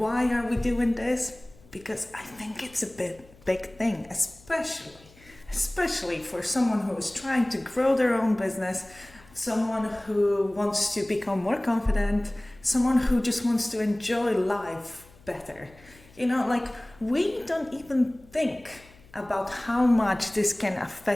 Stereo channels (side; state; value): left; noise; hum, 25 dB below the sound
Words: are we doing this? Because I think it's a big thing, especially for someone who is trying to grow their own business, someone who wants to become more confident, someone who just wants to enjoy life better. Like we don't even think about how much this can